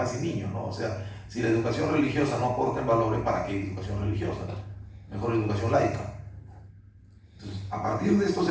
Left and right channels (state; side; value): identical; both; correlation 1.00